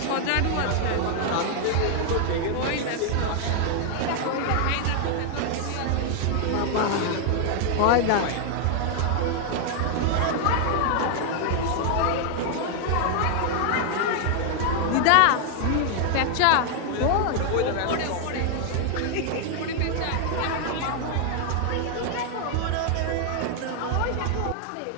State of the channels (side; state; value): both; different; correlation 0.00